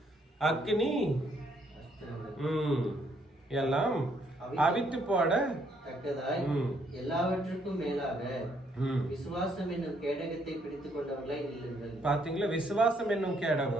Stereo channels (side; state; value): both; normal; correlation 0.70